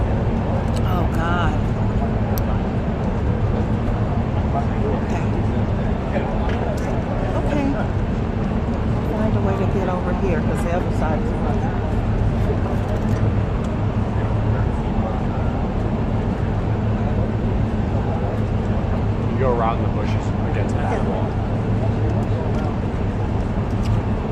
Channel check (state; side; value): identical; both; correlation 1.00